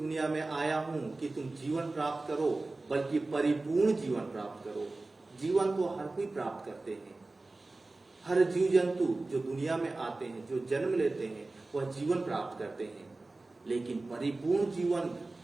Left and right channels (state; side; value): quieter; left; 3.2 dB